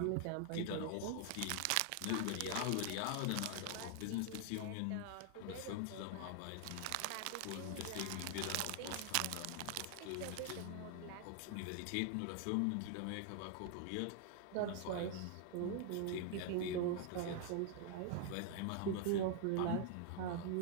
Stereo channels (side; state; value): both; different; correlation 0.00